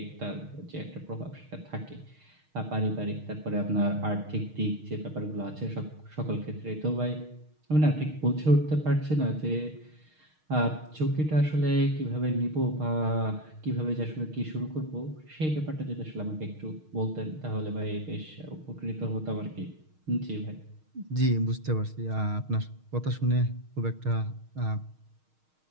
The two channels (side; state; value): left; late; 6.4 ms